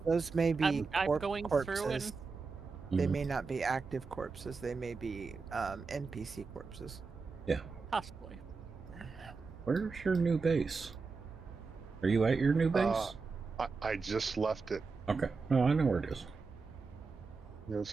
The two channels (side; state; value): left; quieter; 4.5 dB